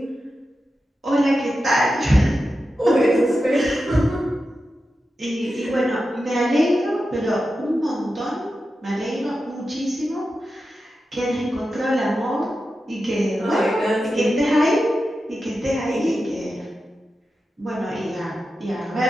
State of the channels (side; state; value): both; normal; correlation 0.91